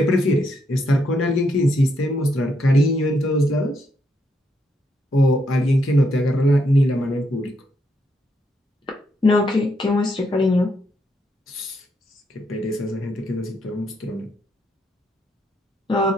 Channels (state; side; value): normal; both; correlation 0.77